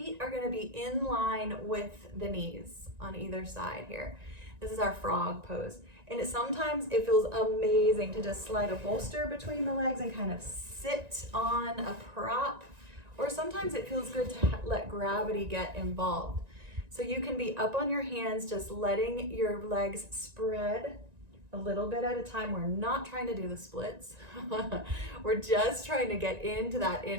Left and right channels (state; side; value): late; left; 1.9 ms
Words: are gonna be in line with the knees on either side here. This is our frog pose. And sometimes it feels amazing to just slide a bolster between the legs and kind of sit on a prop. Or sometimes it feels good to let gravity get involved. So you can be up on your hands, just letting your legs spread a little bit at a time. We're not trying to do the splits. We're just trying to get into that